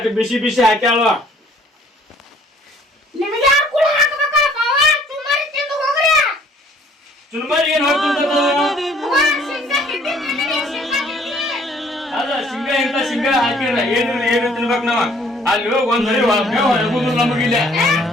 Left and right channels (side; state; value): both; normal; correlation 0.58